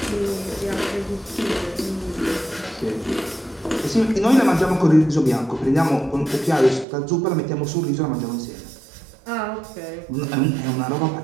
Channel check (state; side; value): drops out; left; at 6.9 s